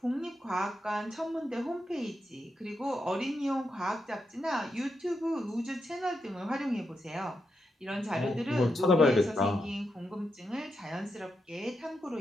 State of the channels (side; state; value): both; normal; correlation 0.85